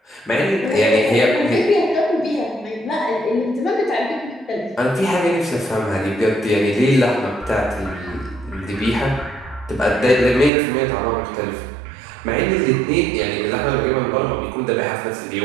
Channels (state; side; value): drops out; left; at 10.5 s